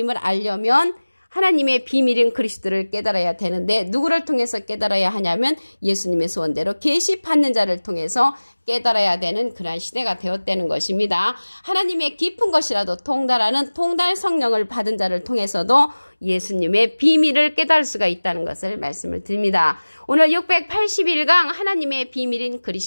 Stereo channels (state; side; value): inverted; both; correlation -1.00